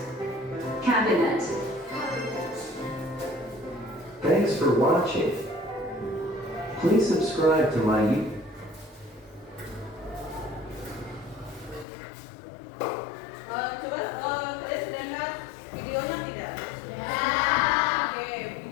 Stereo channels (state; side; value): drops out; right; at 11.9 s